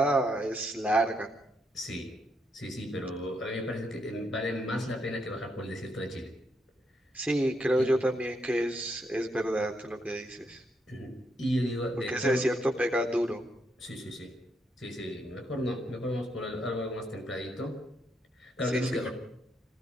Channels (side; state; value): both; normal; correlation 0.78